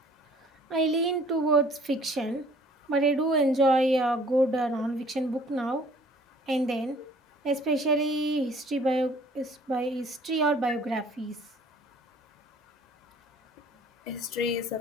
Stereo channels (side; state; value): both; normal; correlation 0.55